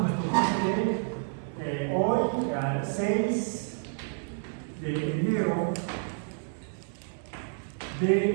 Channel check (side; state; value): left; silent; 58 dB below the other